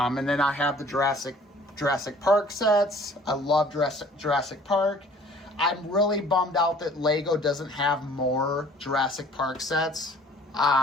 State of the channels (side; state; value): both; normal; correlation 0.53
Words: then I have the Jurassic Park sets. I love Jurassic Park. I'm really bummed out that Lego doesn't have more Jurassic Park sets.